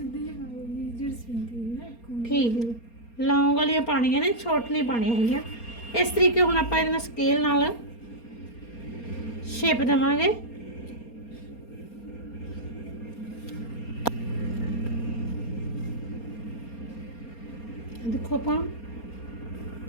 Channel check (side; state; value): right; late; 4.3 ms